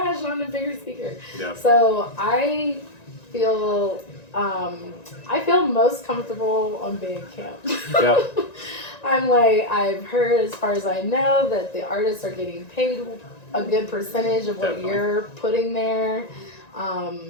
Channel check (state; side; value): late; right; 1.9 ms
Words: on a bigger speaker. Yeah. So I feel most comfortable on Bandcamp. Yeah. I'm like, I've heard, as far as I know, that the artists are getting paid a good percentage of what you're putting there.